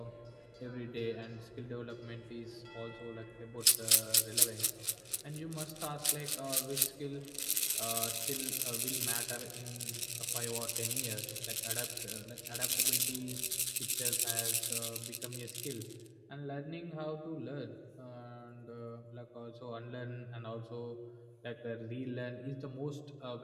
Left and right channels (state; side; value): identical; both; correlation 1.00